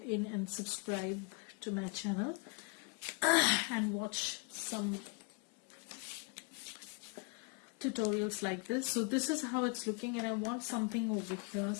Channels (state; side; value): quieter; right; 32.9 dB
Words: in and subscribe to my channel and watch some tutorials like this. So this is how it's looking, and I want something over here,